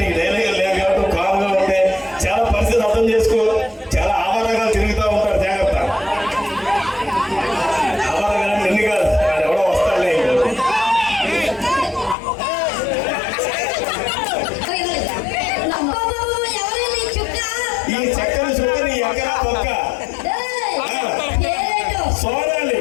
నీకు డైలాగ్ లేదు కాబట్టి కామ్గా ఉంటే చాలా పరిస్థితి అర్థం చేసుకో. చాలా ఆవారంగా తిరుగుతూ ఉంటారు. జాగ్రత్త. ఆవారంగా ఎన్ని కాదు, ఎవడో వస్తాడులే. ఈ చక్కని చుక్కని ఎక్కడా పక్క సోనాలి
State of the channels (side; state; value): right; drops out; at 12.2 s